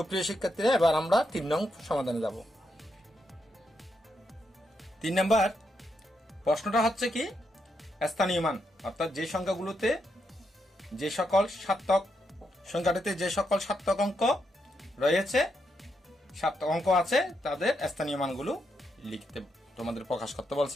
শিক্ষার্থীরা, এবার আমরা 3 নং সমাধানে যাব। 3 নম্বর প্রশ্নটা হচ্ছে কি? স্থানীয় মান, অর্থাৎ যে সংখ্যাগুলোতে যে সকল সার্থক সংখ্যাটিতে যে সকল সার্থক অঙ্ক রয়েছে, সার্থক অঙ্ক আছে, তাদের স্থানীয় মানগুলো লিখতে তোমাদের প্রকাশ করতে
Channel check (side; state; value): both; normal; correlation 0.81